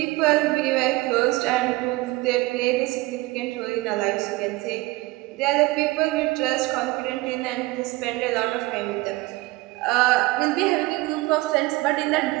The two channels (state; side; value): quieter; left; 21.1 dB